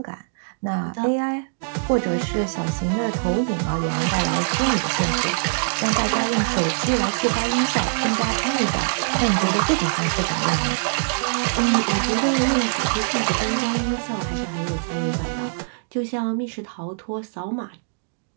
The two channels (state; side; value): silent; left; digital silence